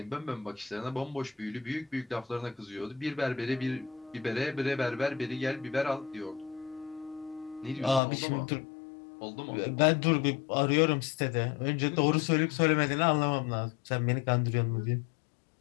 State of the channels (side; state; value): right; drops out; at 8.0 s